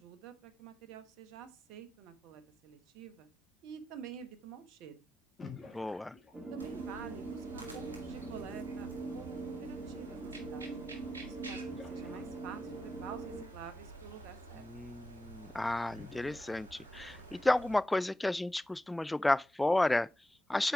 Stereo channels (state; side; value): normal; both; correlation 0.91